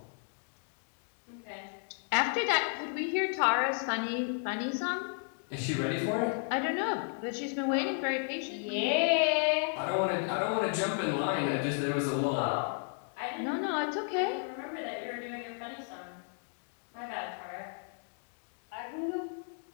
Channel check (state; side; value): silent; right; 56 dB below the other